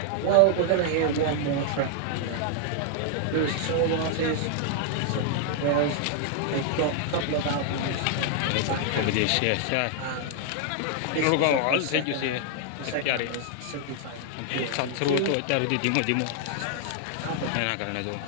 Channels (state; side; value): different; both; correlation -0.01